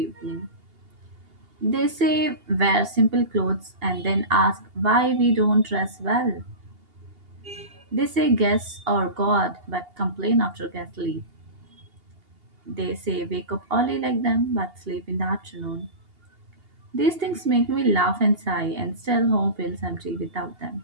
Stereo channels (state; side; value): late; left; 2.8 ms